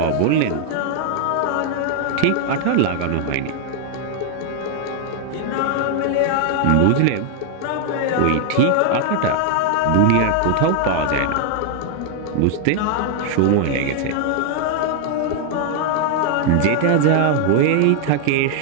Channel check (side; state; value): both; different; correlation 0.00